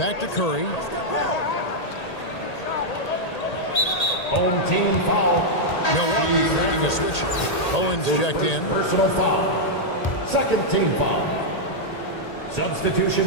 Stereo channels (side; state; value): right; late; 1.8 ms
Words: to Curry. Home team foul. Milwaukee making a switch. Owens checked in. Personal foul. Second team foul.